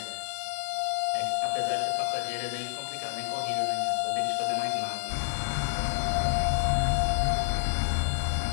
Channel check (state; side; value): silent; right; 59 dB below the other